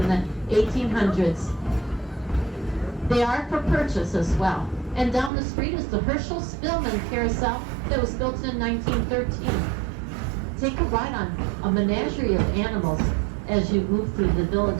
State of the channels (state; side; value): drops out; left; at 5.3 s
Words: the 1800s. They are for purchase as well. And down the street is the Herschel Spillman Carousel that was built in 1913. Take a ride on a menagerie of animals as you move through the